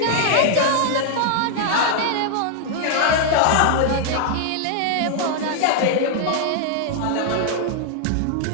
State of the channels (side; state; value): both; different; correlation -0.01